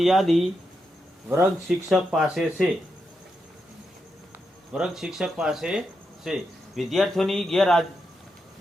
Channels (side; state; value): both; normal; correlation 0.85